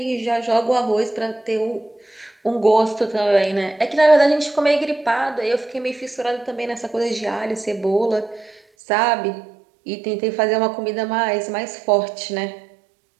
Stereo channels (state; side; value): drops out; left; at 8.6 s